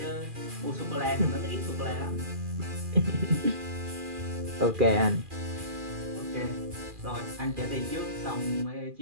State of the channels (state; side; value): late; left; 2.4 ms